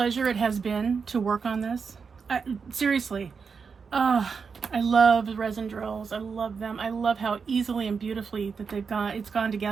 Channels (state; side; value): quieter; left; 5.6 dB